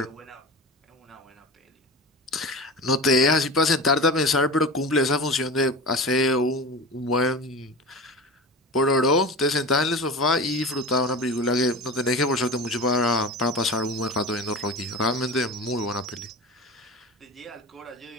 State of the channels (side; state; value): both; normal; correlation 0.31